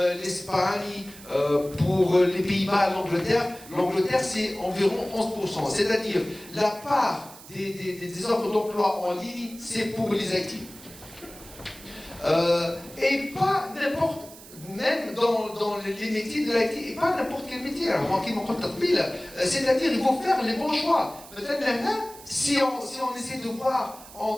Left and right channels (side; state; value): right; noise; hiss, 18 dB below the sound